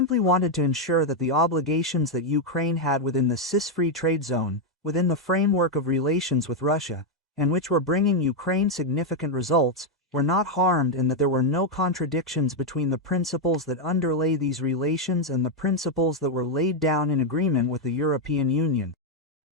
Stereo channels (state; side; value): normal; both; correlation 0.01